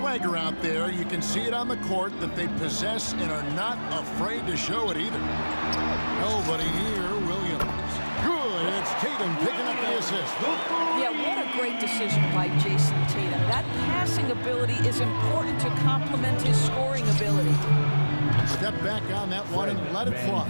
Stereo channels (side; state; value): both; inverted; correlation -1.00